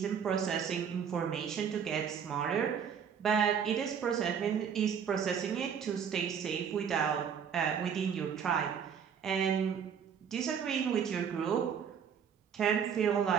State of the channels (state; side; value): quieter; left; 7.4 dB